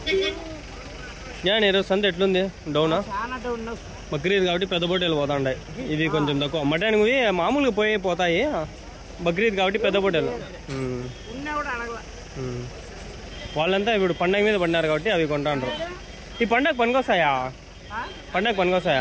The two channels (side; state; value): both; identical; correlation 1.00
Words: ఈరోజు సంత ఎట్లుంది డౌనా బక్రీద్ కాబట్టి పెద్ద పొట్టేలు పోతాయి ఇది కొంచెం తక్కువ మటన్ మామూలుగా పోతాయి బక్రీద్ కాబట్టి పెద్ద పొట్టేలు వాళ్ళంతా ఇప్పుడు పండగ మీద పడినారు కాబట్టి అవి కొంటాండ్రు ఈ పండగ పనికొస్తాయా